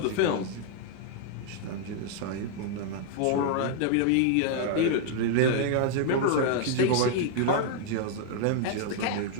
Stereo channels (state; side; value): different; both; correlation 0.00